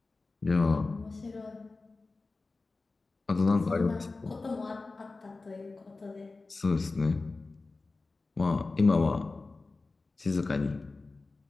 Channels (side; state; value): right; quieter; 3.6 dB